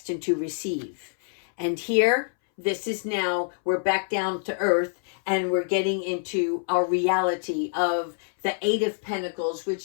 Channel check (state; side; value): silent; right; 61 dB below the other